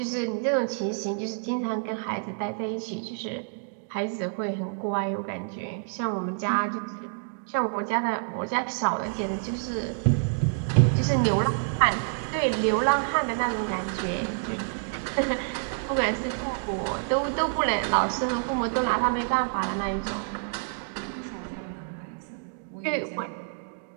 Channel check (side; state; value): left; silent; digital silence